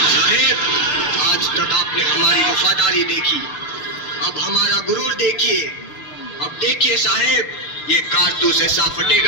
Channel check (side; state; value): right; late; 6.8 ms